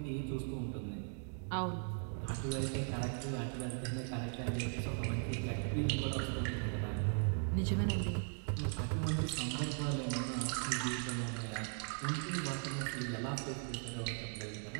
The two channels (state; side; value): silent; left; 52 dB below the other